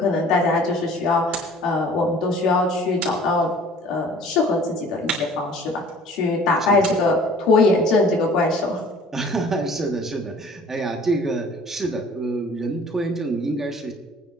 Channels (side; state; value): both; normal; correlation 0.50